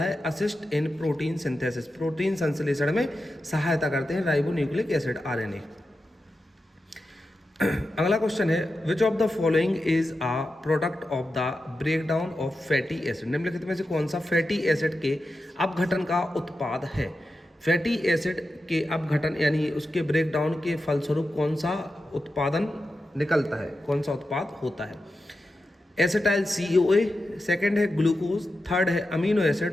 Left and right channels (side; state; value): both; normal; correlation 0.90